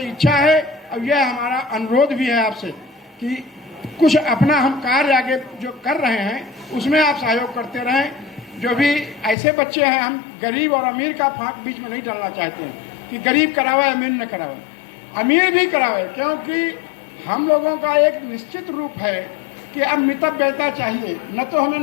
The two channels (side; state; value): right; drops out; at 9.3 s